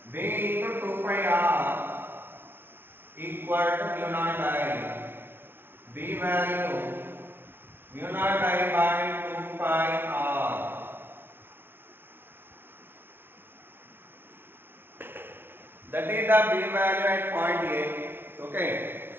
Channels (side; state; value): left; late; 0.10 ms